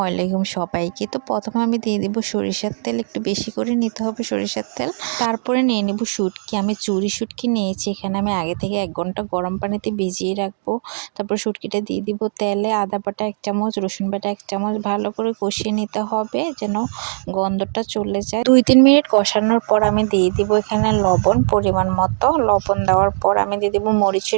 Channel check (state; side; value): silent; left; digital silence